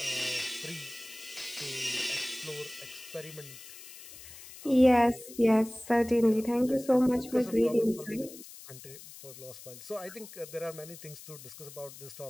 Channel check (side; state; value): left; noise; hiss, 16 dB below the sound